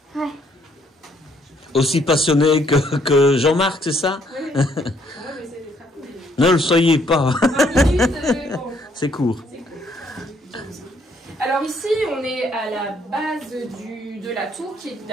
Ouais. Aussi passionné que Jean-Marc, c'est ça? Oui. Moi, je vais essayer d'être rapide. Ne le soyez pas. 20 minutes, bon. C'est court. Alors ici, on est à la base de la tour qui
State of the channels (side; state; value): both; normal; correlation 0.68